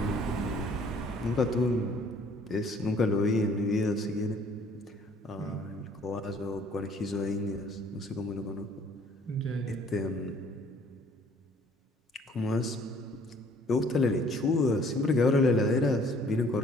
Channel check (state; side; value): normal; both; correlation 0.58